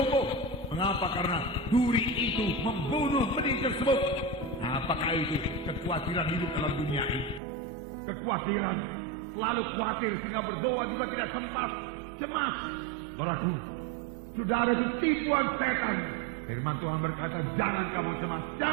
Mengapa? Karena duri itu membunuh benih tersebut. Apakah itu? Kekhawatiran hidup dalam dunia ini. Kekhawatiran, selalu khawatir sehingga berdoa juga tidak sempat. Cemas, saudaraku. Saudara, itu tipuan setan. Firman Tuhan berkata, jangan kamu cemas,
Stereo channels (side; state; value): left; drops out; at 7.4 s